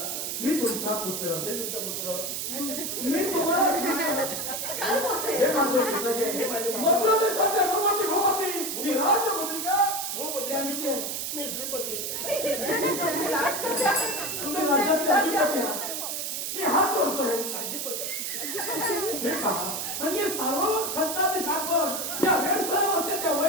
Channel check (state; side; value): noise; right; hiss, 3 dB below the sound